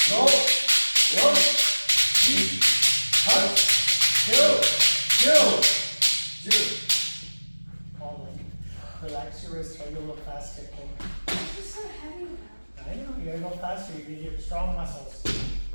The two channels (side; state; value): both; inverted; correlation -1.00